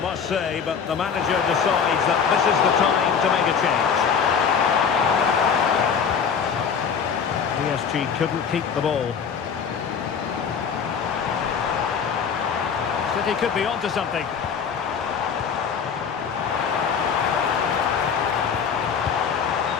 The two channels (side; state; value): right; quieter; 6.6 dB